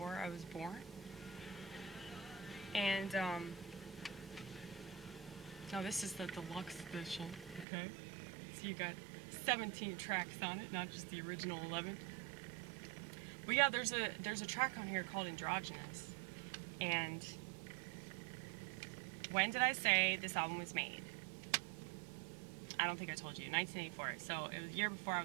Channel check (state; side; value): drops out; left; at 7.7 s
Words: I was born. And, now this is the deluxe edition, okay? So you got 17 tracks on it, not just the original 11. But yeah, there's a track on here called Androgynous. And when did I say this album was made? I don't think I told you. 1984. So it was a year before I